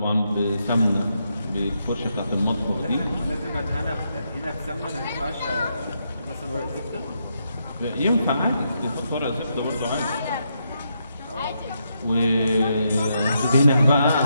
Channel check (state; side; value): inverted; both; correlation -0.80